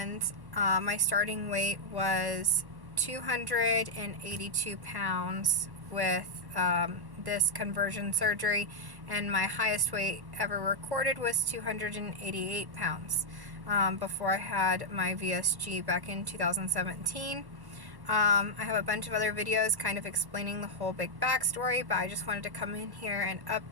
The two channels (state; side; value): late; left; 1.1 ms